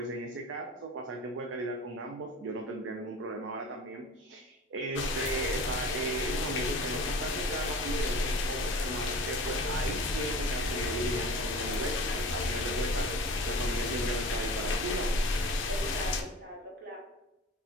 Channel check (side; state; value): both; normal; correlation 0.39